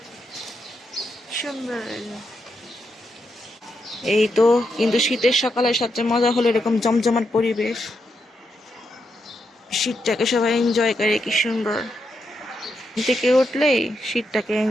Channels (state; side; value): normal; both; correlation 0.83